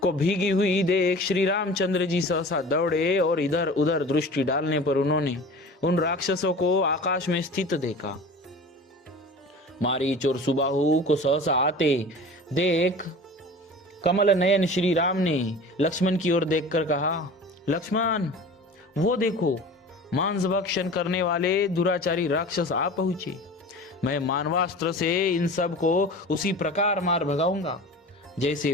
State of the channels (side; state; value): both; normal; correlation 0.38